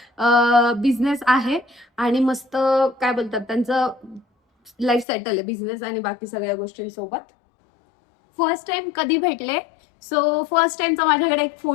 बिझनेस आहे आणि मस्त काय बोलतात त्यांचं लाईफ सेटल आहे बिझनेस आणि बाकी सगळ्या गोष्टींसोबत. फर्स्ट टाइम कधी भेटले? सो फर्स्ट टाइमचा माझ्याकडे एक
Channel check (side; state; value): right; drops out; at 5.1 s